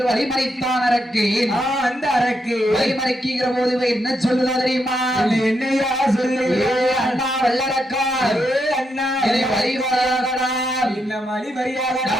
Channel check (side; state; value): both; normal; correlation 0.81